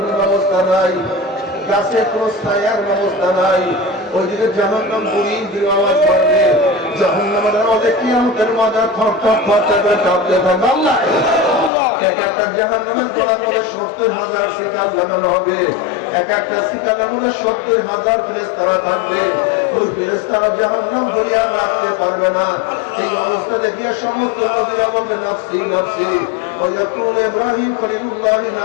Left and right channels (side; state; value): right; drops out; at 11.7 s